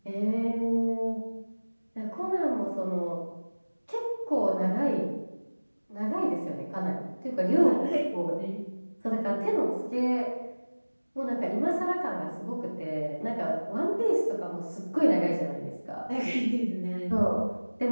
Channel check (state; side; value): inverted; both; correlation -1.00